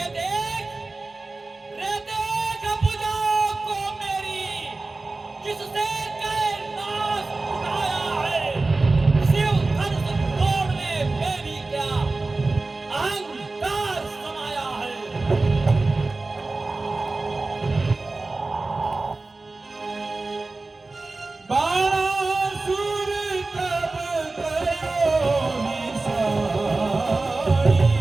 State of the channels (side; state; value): left; quieter; 3.4 dB